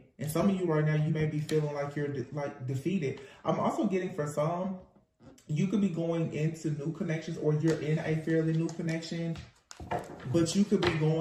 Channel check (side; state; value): both; identical; correlation 1.00